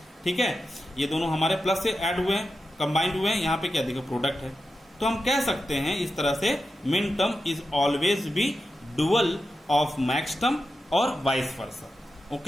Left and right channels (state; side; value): normal; both; correlation 0.90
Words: ठीक है, ये दोनों हमारे प्लस से ऐड हुए हैं, कंबाइंड हुए हैं, यहाँ पे क्या देखिए प्रोडक्ट है। तो हम कह सकते हैं इस तरह से min term is always be dual of max term और vice versa,